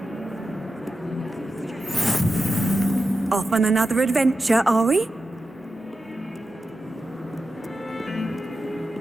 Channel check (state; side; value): normal; both; correlation 0.91